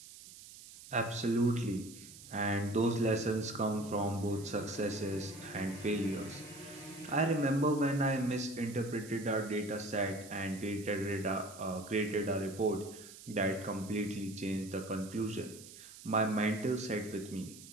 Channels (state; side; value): noise; right; hiss, 17 dB below the sound